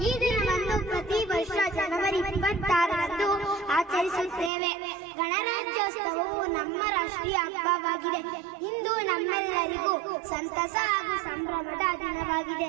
ಈ ದಿನವನ್ನು ಪ್ರತಿ ವರ್ಷ ಜನವರಿ 26ರಂದು ಆಚರಿಸುತ್ತೇವೆ. ಗಣರಾಜ್ಯೋತ್ಸವವು ನಮ್ಮ ರಾಷ್ಟ್ರೀಯ ಹಬ್ಬವಾಗಿದೆ. ಇಂದು ನಮ್ಮೆಲ್ಲರಿಗೂ ಸಂತಸ ಹಾಗೂ ಸಂಭ್ರಮದ ದಿನವಾಗಿದೆ.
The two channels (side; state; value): left; drops out; at 4.5 s